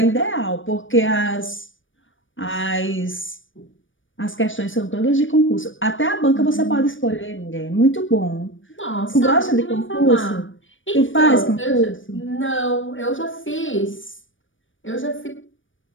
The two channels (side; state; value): right; late; 0.57 ms